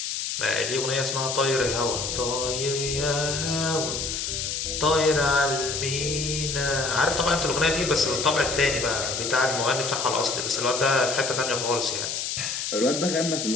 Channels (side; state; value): left; noise; hiss, 3 dB below the sound